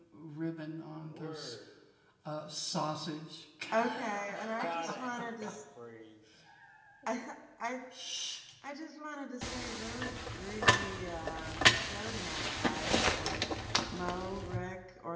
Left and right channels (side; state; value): both; identical; correlation 1.00